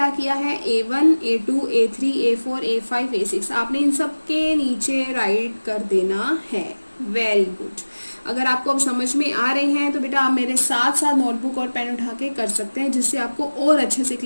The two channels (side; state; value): both; inverted; correlation -1.00